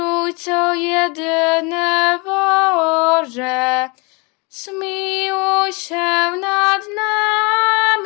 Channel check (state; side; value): quieter; right; 29.4 dB